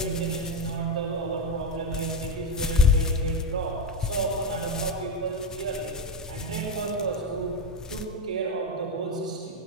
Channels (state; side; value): normal; both; correlation 0.11